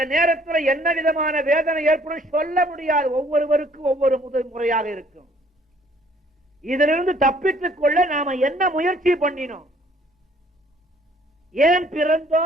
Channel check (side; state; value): both; normal; correlation 0.60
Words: நேரத்தில் என்ன விதமான வேதனை ஏற்படும் சொல்ல முடியாது. ஒவ்வொருவருக்கும் ஒவ்வொரு முறையாக இருக்கும். இதிலிருந்து தப்பித்துக் கொள்ள நாம என்ன முயற்சி பண்ணினோம்? ஏன்